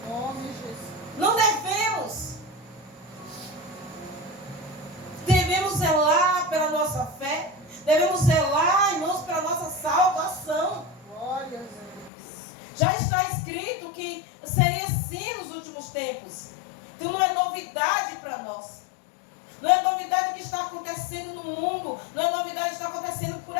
nome, Jesus. Não devemos. Devemos zelar pela nossa fé. Devemos zelar, irmãos, pela nossa salvação. Glória a Deus. Já está escrito que seria assim nos últimos tempos. Então não é novidade para nós. Não é novidade o que está acontecendo no mundo. Não é novidade o que está acontecendo por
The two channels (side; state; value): right; drops out; at 12.1 s